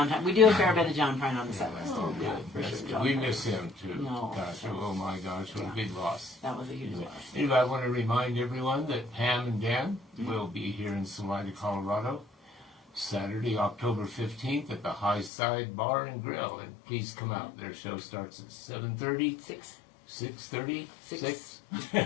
Prine. We do a fair bit of John Prine on the set list. Oh, Yeah, good. for sure. We miss him too. No. Gosh, oh my gosh, what a big loss. That was a huge loss. Anyway, I want to remind everyone that Pam and Dan will be here in Salida, Colorado, Saturday, October 15th at the High Side Bar and Grill. And please come out. Their show starts at 7:30. 6:30? Six.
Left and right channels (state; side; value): drops out; right; at 15.3 s